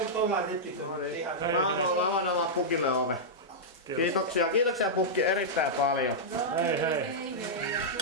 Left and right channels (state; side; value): normal; both; correlation -0.10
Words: Mä annan vaan Pukille ove. Kiitoksia Pukki erittäin paljon. Hei.